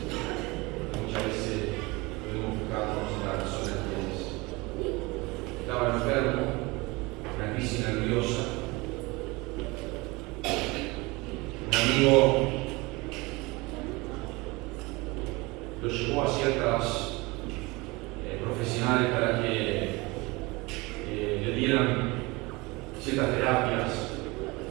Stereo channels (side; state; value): left; quieter; 24.0 dB